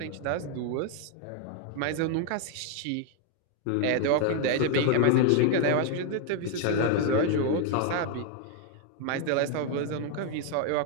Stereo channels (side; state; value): both; different; correlation 0.00